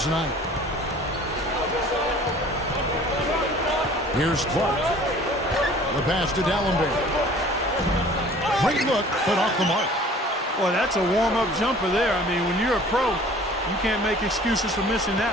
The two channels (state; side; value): normal; both; correlation 0.49